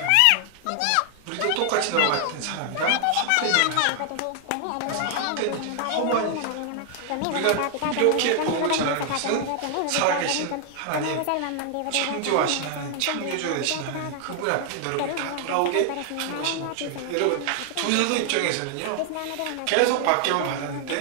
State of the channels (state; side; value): different; both; correlation 0.00